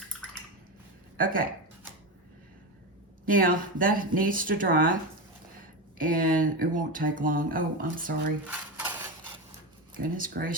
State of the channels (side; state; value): both; normal; correlation 0.17